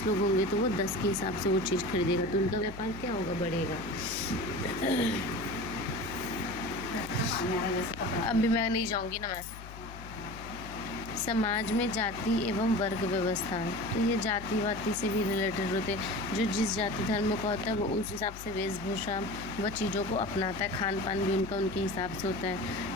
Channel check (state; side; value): noise; left; hum, 14 dB below the sound